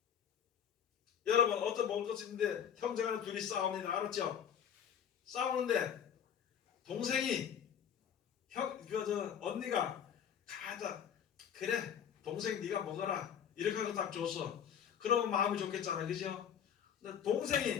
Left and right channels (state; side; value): quieter; right; 8.6 dB